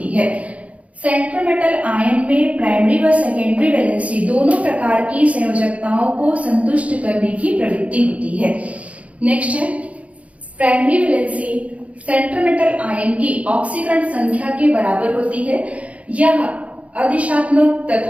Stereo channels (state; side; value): late; left; 0.065 ms